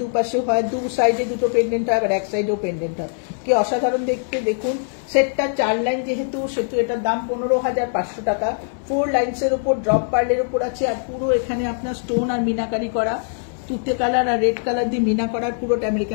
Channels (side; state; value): right; silent; 60 dB below the other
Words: দুপাশেও হয়। দু সাইডে দুটো পেন্ডেন্ট হয়, আবার এক সাইডেও পেন্ডেন্ট হয়। কি অসাধারণ দেখতে দেখুন। সেটটা 4 লাইন যেহেতু, সেহেতু এটার দাম 15,500 টাকা। 4 লাইনসের উপর ড্রপ পার্লের উপর আছে, আর পুরো এখানে আপনার স্টোন আর মিনাকারি করা, তুতে কালার আর রেড কালার দিয়ে মিনা করার, পুরোটা